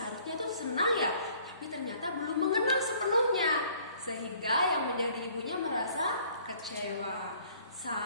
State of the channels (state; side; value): inverted; both; correlation -0.57